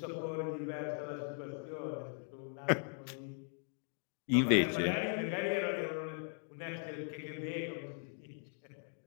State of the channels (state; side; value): silent; right; 52 dB below the other